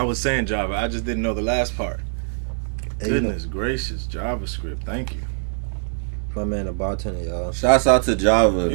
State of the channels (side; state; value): left; silent; digital silence